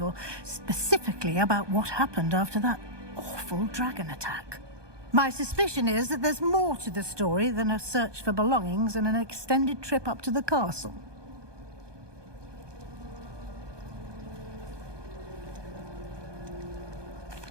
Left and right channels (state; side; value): late; left; 1.2 ms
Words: specifically about what happened after that awful dragon attack. My suspicion is that there's more to the story than a search for belongings and an extended trip up to the castle.